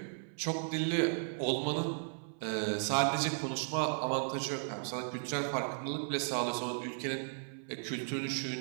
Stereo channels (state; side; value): silent; left; 54 dB below the other